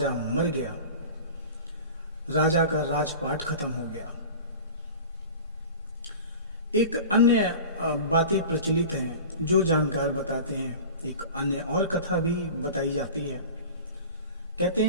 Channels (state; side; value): inverted; both; correlation -0.37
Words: मर गया, राजा का राजपाट खत्म हो गया। एक अन्य बातें प्रचलित हैं जो जानकार बताते हैं। एक अन्य और कथा भी बताई जाती है। कहते